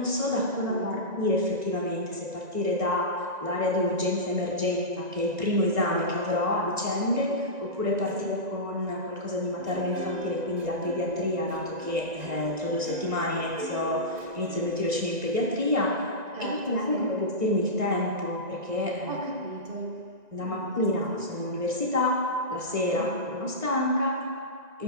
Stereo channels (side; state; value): left; late; 1.9 ms